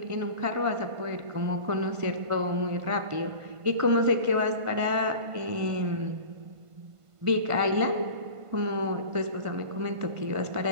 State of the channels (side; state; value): left; late; 1.5 ms